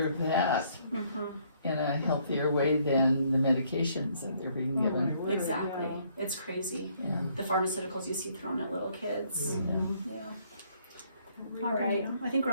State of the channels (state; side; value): inverted; both; correlation -0.66